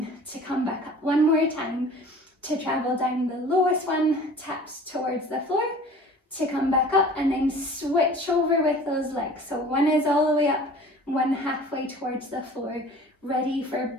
to come back up. One more time. To travel down, the lowest one taps towards the floor to come back up, and then switch over with those legs. So one is all the way up, one halfway towards the floor. Ready for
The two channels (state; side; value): normal; both; correlation 0.45